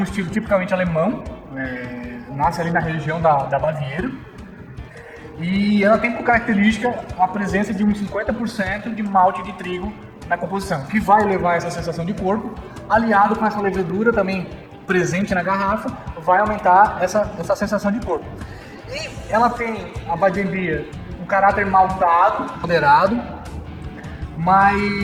estilo tipicamente alemão, nasce ali na região da Baviera. E ela tem por característica a presença de uns 50% de malte de trigo na composição, que vai levar essa sensação de corpo, aliado com essa levedura também presente na garrafa, vai aumentar essa sensação de corpo. E ela tem, a Weizenbier, um caráter maltado, moderado,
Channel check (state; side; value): identical; both; correlation 1.00